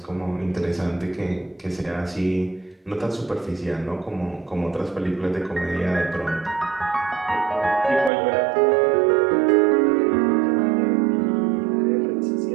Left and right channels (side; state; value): left; drops out; at 8.1 s